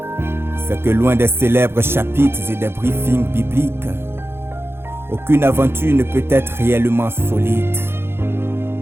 C'est que loin des célèbres chapitres et des briefings bibliques, aucune aventure ne peut être réellement solide.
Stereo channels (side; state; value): left; late; 0.11 ms